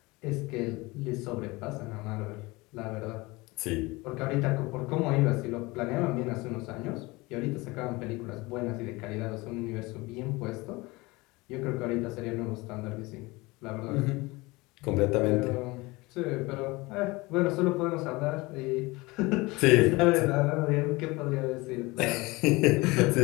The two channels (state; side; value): quieter; right; 23.0 dB